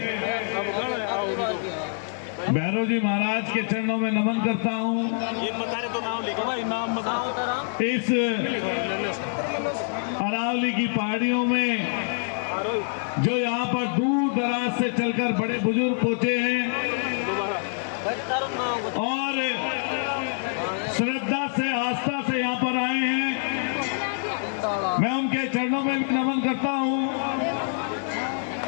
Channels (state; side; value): silent; right; 55 dB below the other